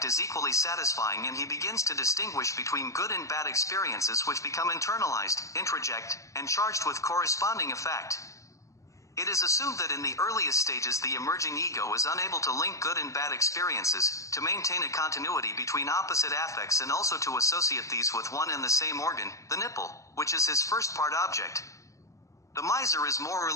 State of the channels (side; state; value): right; late; 0.15 ms